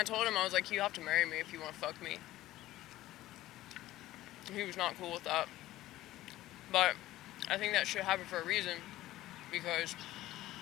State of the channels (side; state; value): right; quieter; 15.6 dB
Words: told him, I was like, you have to marry me if you want to fuck me. And he was not cool with that. But I think that should happen for a reason. Because